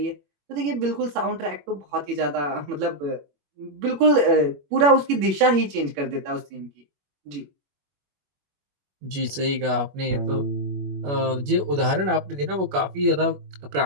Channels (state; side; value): late; left; 21 ms